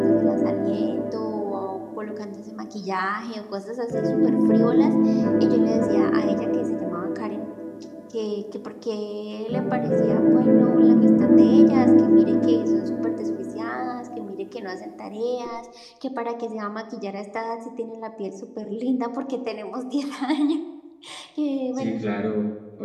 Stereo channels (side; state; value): both; identical; correlation 1.00